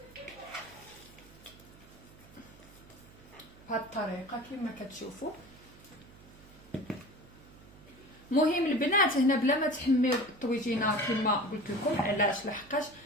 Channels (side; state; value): right; noise; hum, 22 dB below the sound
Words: بهاد الطريقه كما كتشوفوا. مهم البنات هنا بلا ما تحميو الطويجينه كما قلت لكم. علاش؟ لحقاش